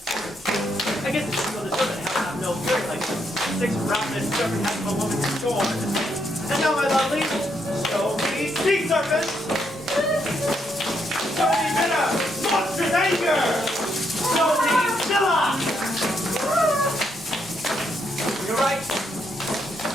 I guess it's true the serpent has to have no fury like this. Six ravenous serpent has no woman to scorn. And now, my lovely, show me sea serpent! Show me bitter, monstrous anger! Show me Scylla! You're right.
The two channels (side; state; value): both; normal; correlation 0.77